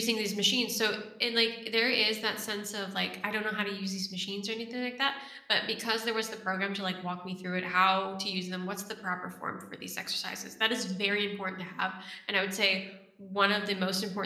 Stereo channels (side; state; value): both; identical; correlation 1.00